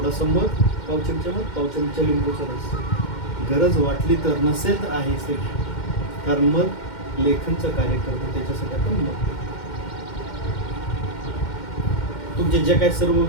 मध, पाव चमचा मध, पाव चमचा लिंबूचा रस. गरज वाटली तर, नसेल तर आहेच ते, कारण मध लेखनचं कार्य करतो, त्याच्यासाठी आपण मध. तुमचे जे काही सर्व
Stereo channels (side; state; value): right; late; 2.1 ms